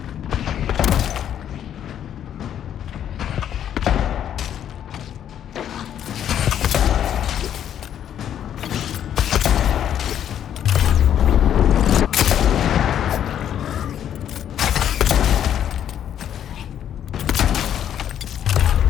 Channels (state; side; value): quieter; right; 10.0 dB